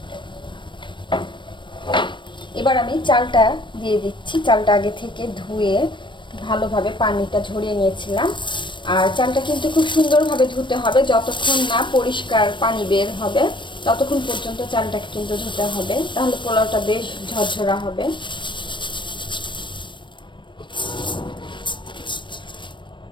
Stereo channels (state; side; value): late; right; 0.23 ms